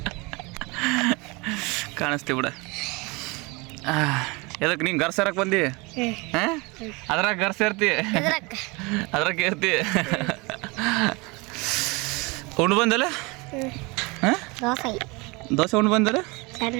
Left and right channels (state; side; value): quieter; left; 26.5 dB